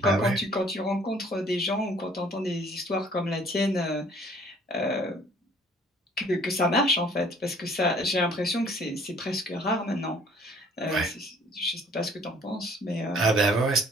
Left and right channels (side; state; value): both; normal; correlation 0.56